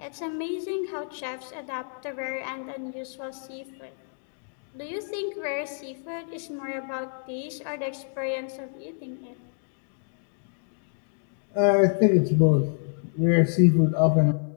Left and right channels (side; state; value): right; silent; digital silence